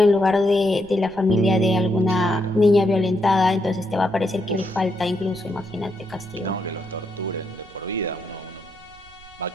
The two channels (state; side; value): noise; right; rumble, 25 dB below the sound